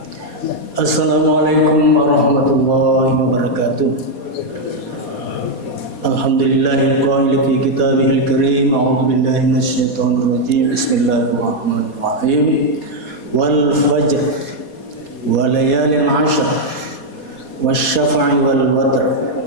Assalamualaikum warahmatullahi wabarakatuh. Alhamdulillahil qail fi kitabihil karim. A'udzu billahi minasyaitonir rajim. Bismillahirrahmanirrahim. Wal fajr wa layalin 'ashr wasy-syaf'i wal watr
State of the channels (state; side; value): late; right; 4.2 ms